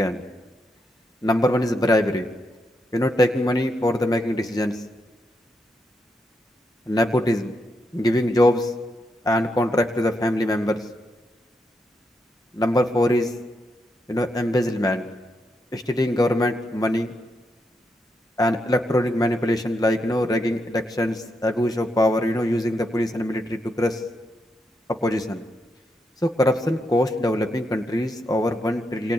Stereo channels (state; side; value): normal; both; correlation 0.82